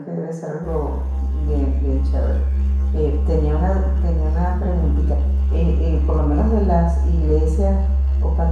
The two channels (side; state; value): both; identical; correlation 1.00